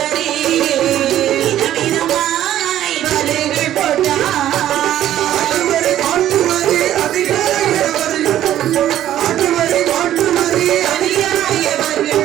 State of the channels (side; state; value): left; quieter; 12.2 dB